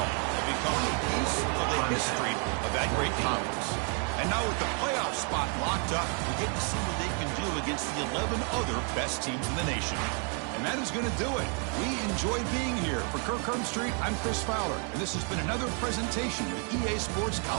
become a piece of the history of that great conference. And now with the playoff spot locked up, we get to see what they can do against the 11 other best teams in the nation. And that is going to do it. We enjoy being here. For Kirk Herbstreit, I'm Chris Fowler, and this has been another presentation of EA Sports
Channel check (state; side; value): quieter; left; 39.0 dB